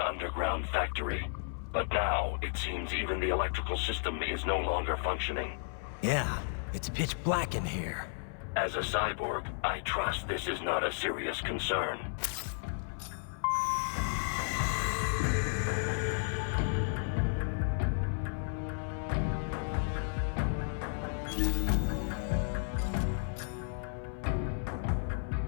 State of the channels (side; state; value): right; silent; 55 dB below the other